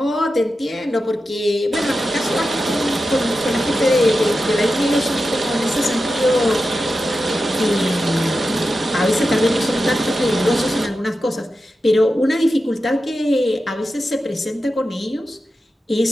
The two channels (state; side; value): normal; both; correlation 0.91